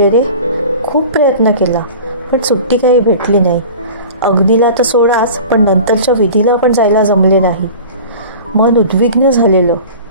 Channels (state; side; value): inverted; both; correlation -0.39